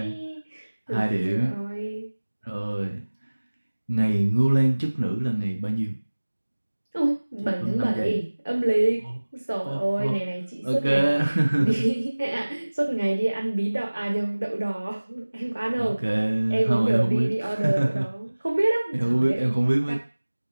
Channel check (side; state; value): both; inverted; correlation -1.00